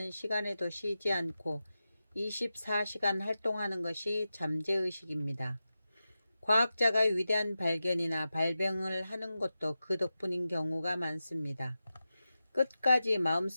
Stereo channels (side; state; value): both; inverted; correlation -0.92